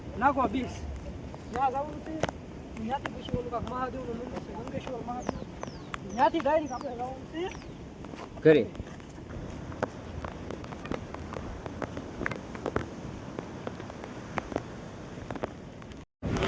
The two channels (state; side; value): identical; both; correlation 1.00